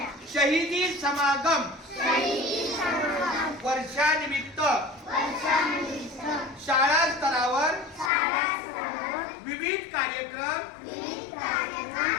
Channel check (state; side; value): drops out; right; at 8.1 s